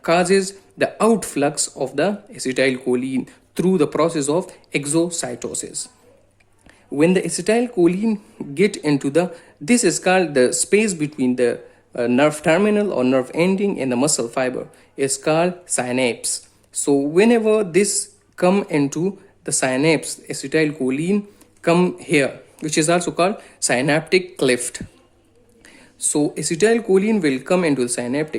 causes the outflux of the acetylcholine through the process of exocytosis. When the acetylcholine get into this is called the space between the nerve terminal or nerve ending and the muscle fiber is called synapse. So whenever this come into the synapse, acetylcholine come here, which is also called synaptic cleft. So acetylcholine will come into the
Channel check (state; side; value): identical; both; correlation 1.00